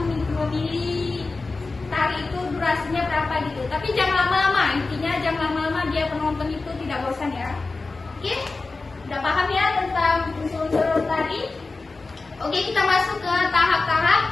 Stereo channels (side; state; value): right; quieter; 3.7 dB